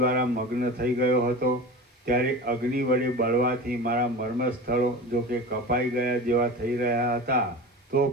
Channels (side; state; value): both; normal; correlation 0.32